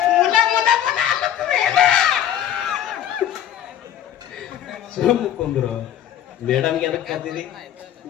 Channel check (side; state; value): right; quieter; 10.8 dB